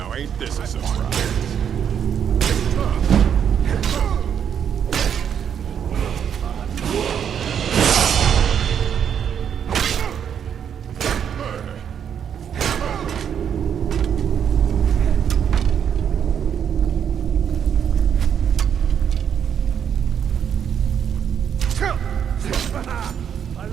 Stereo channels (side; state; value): left; quieter; 8.3 dB